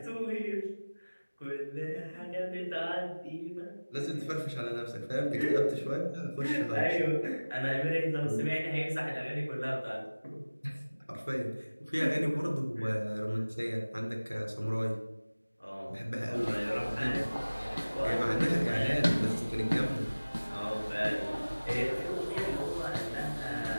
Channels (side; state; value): both; inverted; correlation -1.00